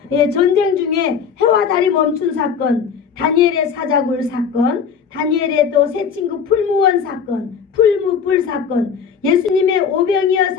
전쟁 중에 해와 달이 멈춘 사건, 다니엘의 사자굴 사건, 다니엘의 또 새 친구 풀무원 사건, 풀무불 사건, 예수님의 오병이어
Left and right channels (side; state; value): right; quieter; 6.7 dB